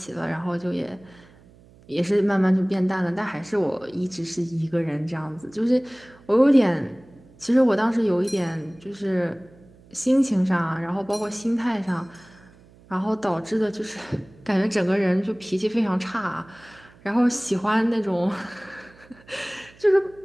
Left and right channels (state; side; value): noise; right; hum, 26 dB below the sound